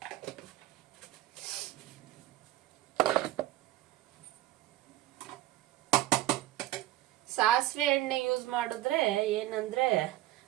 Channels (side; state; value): left; quieter; 15.2 dB